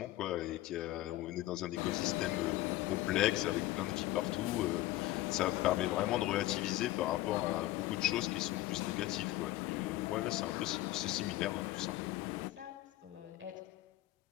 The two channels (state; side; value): quieter; right; 16.3 dB